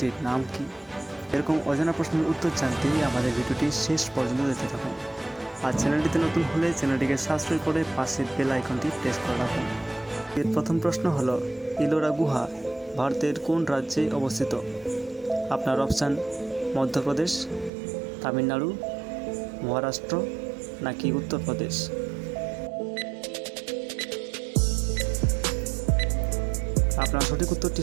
নাম কি? এরকম অজানা প্রশ্নের উত্তর জানতে আমাদের ভিডিওটি শেষ পর্যন্ত দেখতে থাকুন। আর চ্যানেলটিতে নতুন হলে চ্যানেলটিকে সাবস্ক্রাইব করে পাশের বেল আইকনটি প্রেস করে রাখুন। এর প্রথম প্রশ্ন হলো, ইলোরা গুহা ভারতের কোন রাজ্যে অবস্থিত? আপনার অপশান মধ্যপ্রদেশ, তামিলনাড়ু, মহারাষ্ট্র নাকি উত্তরপ্রদেশ? আপনার সঠিক উত্তরটি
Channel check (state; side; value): drops out; left; at 17.7 s